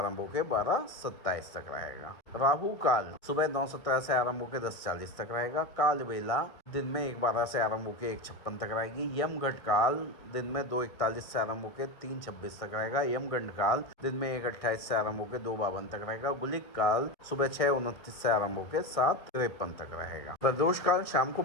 होकर 12:27 तक रहेगा। राहु काल सुबह 9:17 से आरंभ होकर 10:40 तक रहेगा। काल बेला दिन में 1:12 से आरंभ होकर 1:56 तक रहेगी। यमघट काल दिन में 2:41 से आरंभ होकर 3:26 तक रहेगा। यमगंड काल दिन में 1:28 से आरंभ होकर 2:52 तक रहेगा। गुलिक काल सुबह 6:29 से आरंभ होकर 7:53 तक रहेगा। प्रदोष काल शाम को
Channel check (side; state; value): right; late; 1.6 ms